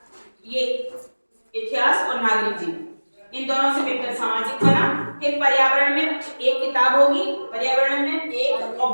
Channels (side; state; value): both; inverted; correlation -1.00